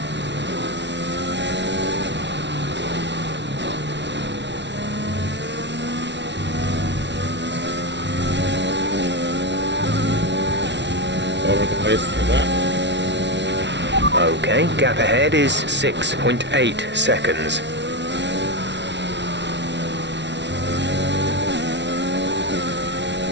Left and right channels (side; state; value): left; late; 0.51 ms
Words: Over the place for that. Okay, gap ahead is 6.8 seconds.